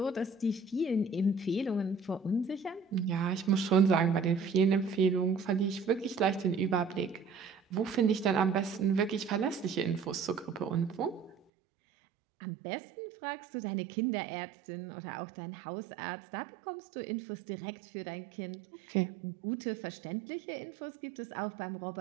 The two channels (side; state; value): left; drops out; at 11.4 s